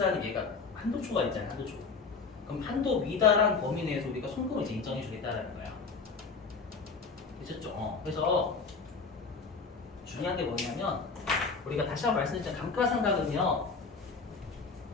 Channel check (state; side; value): quieter; right; 4.7 dB